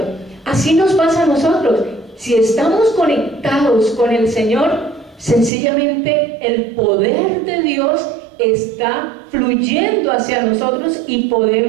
Así nos pasa a nosotros. Si estamos conectados con el Señor, sencillamente el poder de Dios está fluyendo hacia nosotros y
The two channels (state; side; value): drops out; left; at 5.5 s